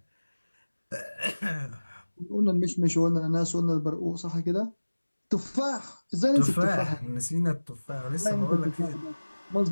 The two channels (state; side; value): inverted; both; correlation -1.00